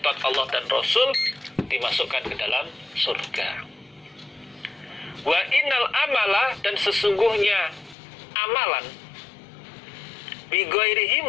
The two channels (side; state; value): right; drops out; at 8.0 s